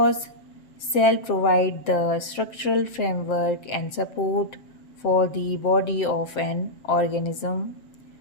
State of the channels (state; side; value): late; right; 7.7 ms